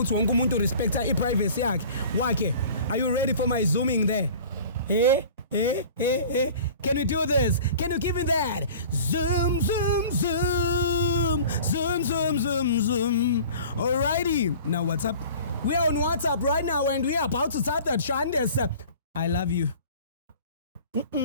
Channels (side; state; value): both; inverted; correlation -0.43